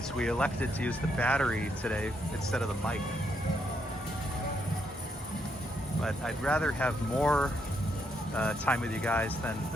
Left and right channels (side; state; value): both; normal; correlation 0.76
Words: we elected to use the battery today instead of the mic. But I'd rather have more time with you guys